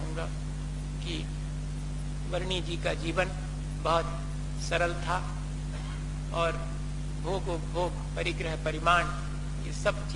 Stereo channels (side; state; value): both; identical; correlation 1.00